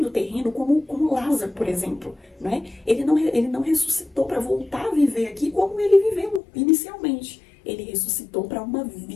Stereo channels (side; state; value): right; drops out; at 6.4 s